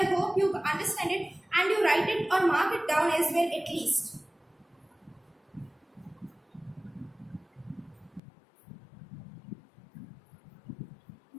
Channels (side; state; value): right; drops out; at 8.2 s